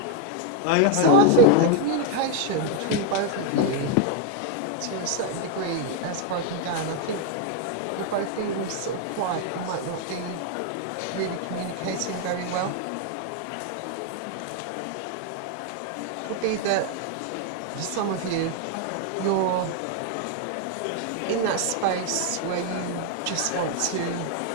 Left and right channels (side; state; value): both; different; correlation 0.00